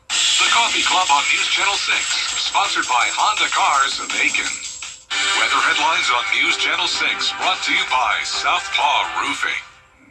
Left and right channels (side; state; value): both; identical; correlation 1.00